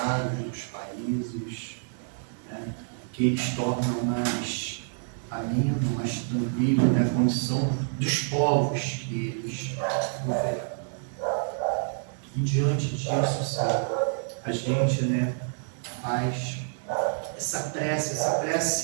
dos países, né, que eles tornam mais ameno, mais tranquilo, né, a condição dos povos que eles governam. E diante disso, sabe, a gente, né, faz essa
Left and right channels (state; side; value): silent; left; digital silence